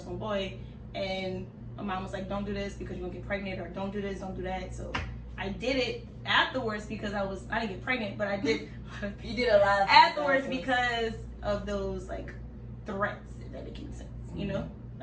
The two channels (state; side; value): identical; both; correlation 1.00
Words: 1 boy, and my mom was like, don't do this because you're gonna get pregnant, or don't do this, don't do that. So I did it afterwards because I didn't get pregnant, but I did. You did a lot of afterwards because of those threats, if that makes sense,